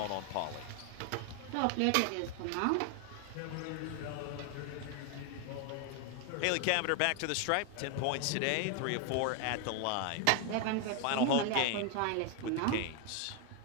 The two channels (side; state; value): both; different; correlation 0.01